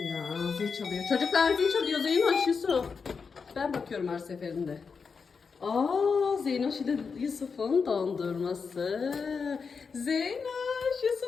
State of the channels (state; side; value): quieter; right; 5.4 dB